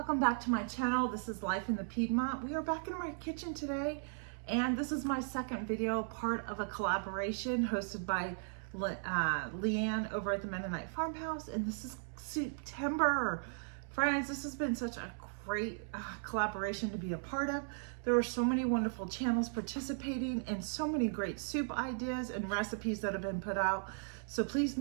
back to my channel. This is Life in the Piedmont. We are back in my kitchen today, and this is my second video, part of a collaboration hosted by Leanne over at the Mennonite Farmhouse, and this is September. Friends, this has been such a great collaboration to be a part of. There were so many wonderful channels participating and so many great soup ideas and recipes that have been put out. So please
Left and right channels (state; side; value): silent; left; digital silence